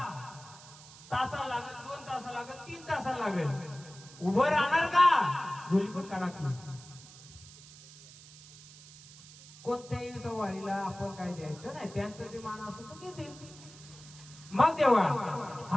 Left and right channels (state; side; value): noise; right; hiss, 19 dB below the sound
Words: तासा लागेल 2 तास लागेल 3 तास लागेल उभं राहणार का? झोली पण काढा की. कोणत्याही सवारीला आपण काय द्यायचं नाही त्यांचं जे मान असतो तो घेतील. मग देवा